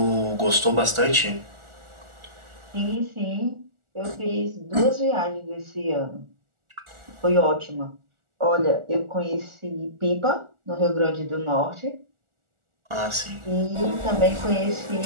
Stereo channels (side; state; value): left; late; 1.4 ms